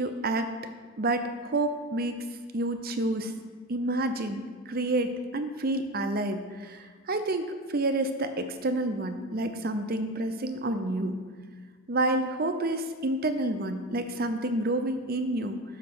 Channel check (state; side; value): normal; both; correlation 0.25